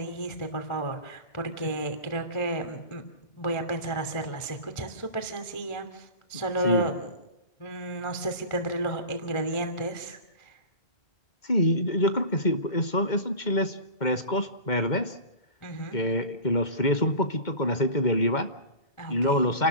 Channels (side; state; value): right; late; 1.4 ms